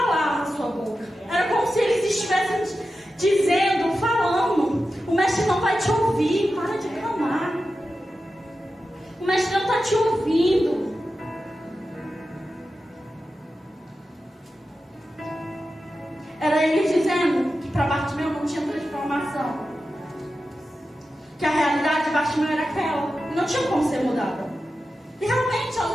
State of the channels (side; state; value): both; normal; correlation 0.92